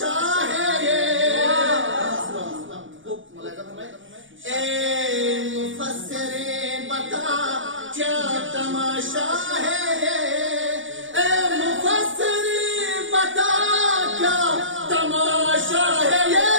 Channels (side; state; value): left; late; 0.56 ms